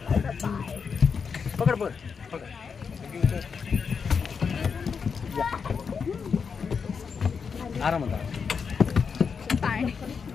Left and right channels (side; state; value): right; quieter; 5.9 dB